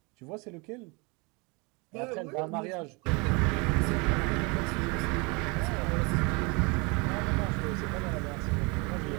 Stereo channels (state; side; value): quieter; left; 28.7 dB